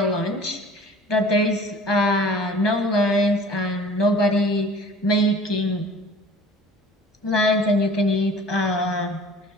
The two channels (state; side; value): normal; both; correlation 0.47